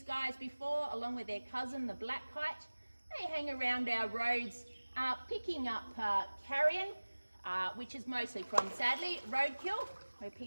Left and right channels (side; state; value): both; inverted; correlation -1.00